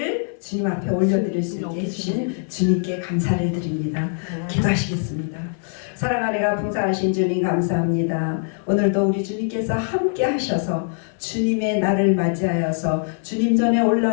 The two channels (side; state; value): right; silent; 60 dB below the other